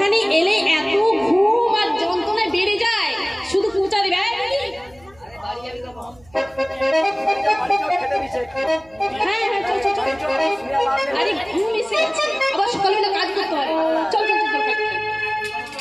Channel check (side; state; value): right; noise; hum, 28 dB below the sound